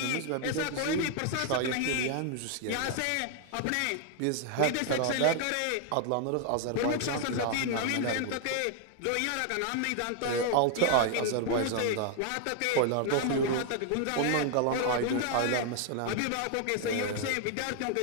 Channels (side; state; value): both; different; correlation 0.00